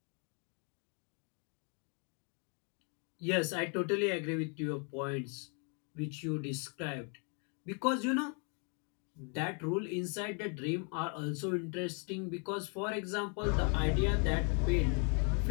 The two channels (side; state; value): right; quieter; 38.0 dB